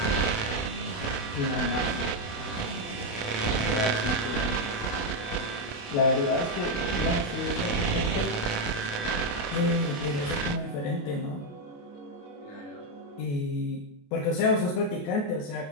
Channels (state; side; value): late; right; 28 ms